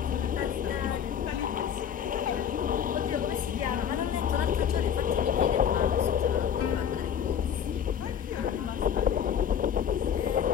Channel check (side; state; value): right; quieter; 8.5 dB